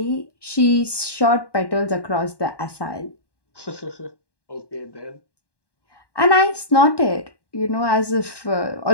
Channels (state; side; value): late; right; 1.1 ms